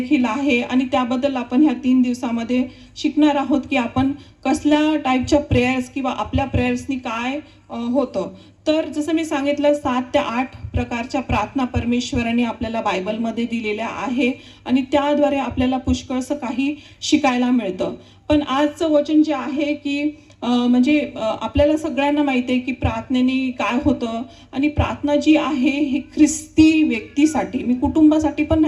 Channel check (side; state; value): both; identical; correlation 1.00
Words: आहे, आणि त्याबद्दल आपण ह्या 3 दिवसामध्ये शिकणार आहोत की आपण कसल्या टाईपच्या प्रेयर्स किंवा आपल्या प्रेयर्सनी काय होतं. तर जसं मी सांगितलं 7 ते 8 प्रकारच्या प्रार्थना परमेश्वराने आपल्याला बायबलमध्ये दिलेल्या आहे, आणि त्याद्वारे आपल्याला पुष्कळसं काही शिकायला मिळतं. पण आजचं वचन जे आहे की म्हणजे आपल्याला सगळ्यांना माहिती आहे की प्रार्थनेने काय होतं, आणि प्रार्थना जी आहे ही ख्रिस्ती व्यक्तीसाठी, मी कुटुंबासाठी पण